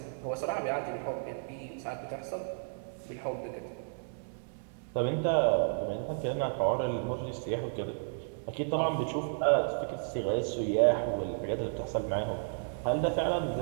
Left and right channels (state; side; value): silent; left; digital silence